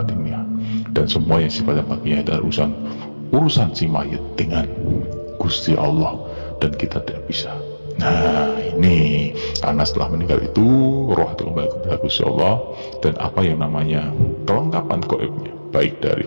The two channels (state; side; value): inverted; both; correlation -1.00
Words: dan semua yang sifatnya batinnya adalah urusan si mayit dengan Gusti Allah, dan kita tidak bisa. Nah, ini karena setelah meninggal itu roh itu kembali kepada Gusti Allah, dan apa yang namanya kelengkapan gaibnya, baik dari